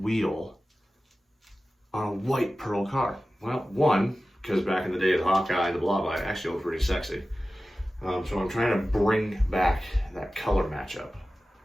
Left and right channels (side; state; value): both; normal; correlation 0.95